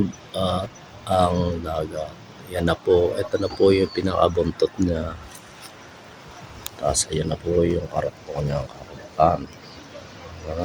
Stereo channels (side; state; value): both; identical; correlation 1.00